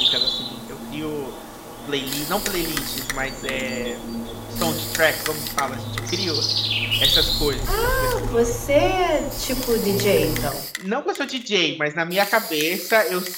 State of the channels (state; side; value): identical; both; correlation 1.00